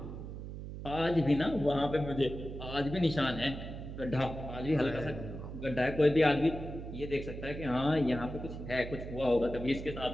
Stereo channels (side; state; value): right; noise; hum, 9 dB below the sound